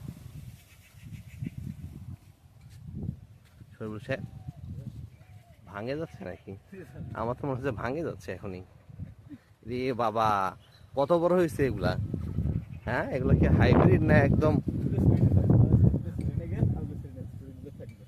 ভাঙে যাচ্ছে নাকি? আমার তো মনে হচ্ছে ভাঙে যাচ্ছে এখনই। রে বাবা, কত বড় হয়েছে এগুলা! হ্যাঁ, এগুলা কি হাইব্রিড না একদম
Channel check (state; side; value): identical; both; correlation 1.00